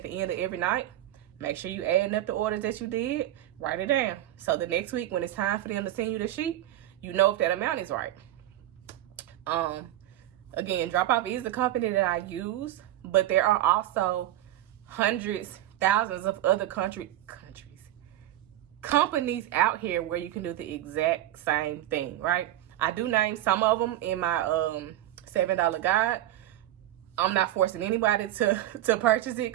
the end of every night, make sure you adding up the orders that you did, write it down. So the next week, when it's time for them to send you the sheet, you know if that amount is right. Again, Drop Off is the company that I use, but there are also hundreds, thousands of other companies out here where you can do the exact same thing, right? I do name some of them in my $7 guide. I'm not forcing anybody to purchase it,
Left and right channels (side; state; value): left; quieter; 13.7 dB